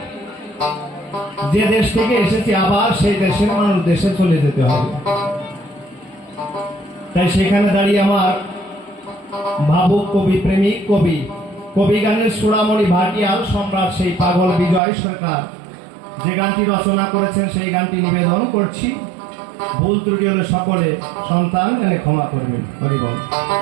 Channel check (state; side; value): drops out; left; at 14.8 s